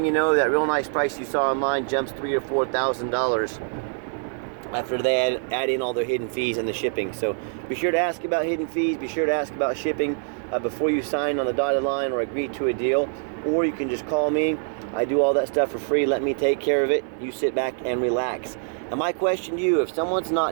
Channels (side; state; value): left; silent; 60 dB below the other